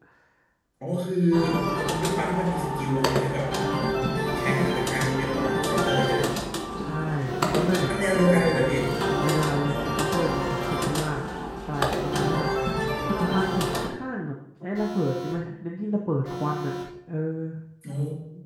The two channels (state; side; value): identical; both; correlation 1.00